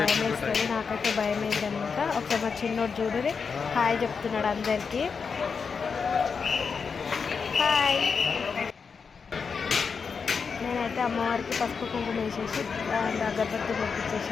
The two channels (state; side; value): quieter; right; 5.6 dB